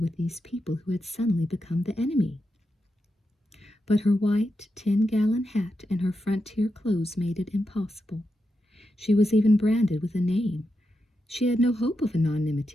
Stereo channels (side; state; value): both; normal; correlation 0.87